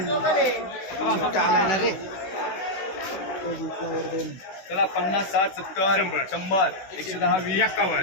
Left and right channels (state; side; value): late; right; 16 ms